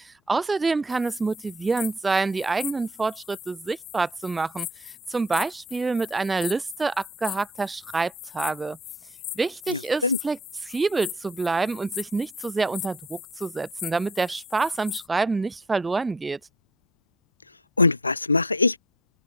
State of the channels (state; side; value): normal; both; correlation 0.48